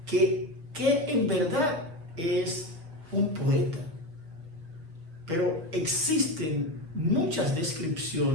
que en verdad es un poeta. Pero existen muchas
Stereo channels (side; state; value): left; late; 6.3 ms